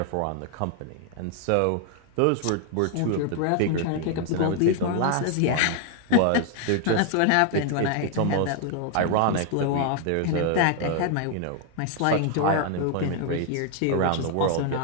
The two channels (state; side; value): different; both; correlation 0.00